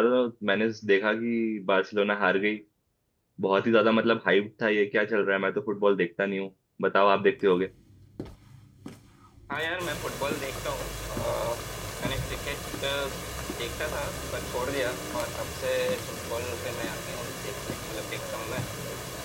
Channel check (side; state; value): both; identical; correlation 1.00